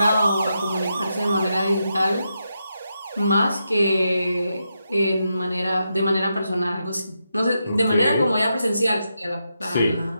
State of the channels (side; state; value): both; inverted; correlation -0.85